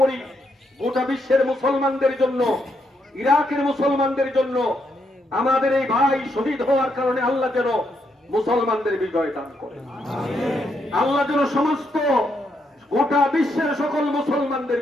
গোটা বিশ্বের মুসলমানদের জন্য, ইরাকের মুসলমানদের জন্য, আমাদের এই ভাই শহীদ হওয়ার কারণে আল্লাহ যেন মুসলমানদের বিজয় দান করেন। আল্লাহ যেন সমস্ত গোটা বিশ্বের সকল মুসলমানদের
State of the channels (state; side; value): normal; both; correlation 0.78